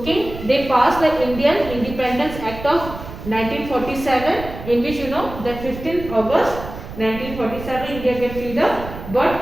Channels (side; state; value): right; noise; rumble, 11 dB below the sound